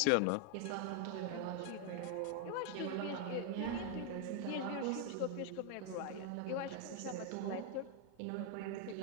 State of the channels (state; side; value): different; both; correlation 0.00